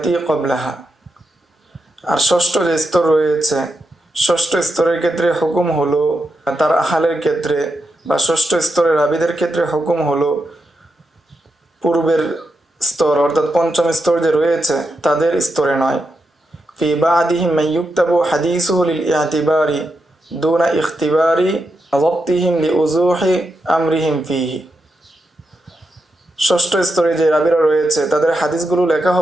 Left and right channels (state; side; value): normal; both; correlation 0.86